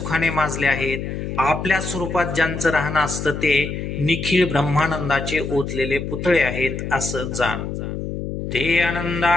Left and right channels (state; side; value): noise; left; hum, 5 dB below the sound